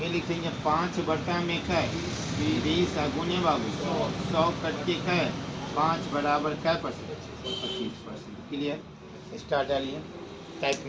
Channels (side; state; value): both; identical; correlation 1.00